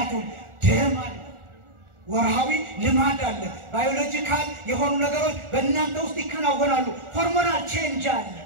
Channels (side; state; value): left; late; 1.4 ms